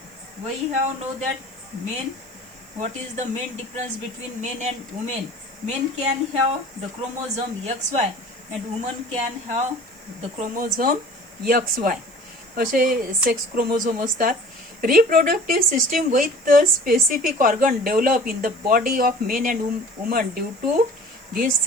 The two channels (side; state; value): right; noise; hiss, 27 dB below the sound